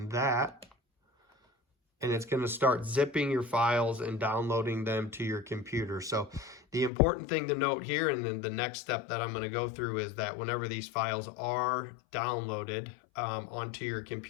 that, and it's going to start zipping your files and downloading them to your computer. So the important thing to note here, and then the next step that I'm going to go through, is that whenever these files are downloaded onto your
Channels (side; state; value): right; drops out; at 6.9 s